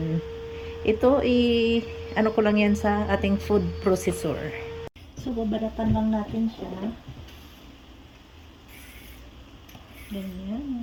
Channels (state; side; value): identical; both; correlation 1.00